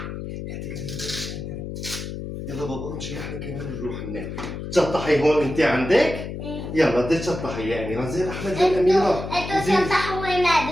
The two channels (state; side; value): noise; left; hum, 7 dB below the sound